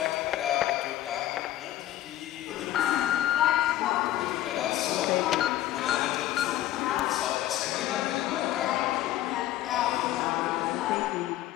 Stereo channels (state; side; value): quieter; right; 13.9 dB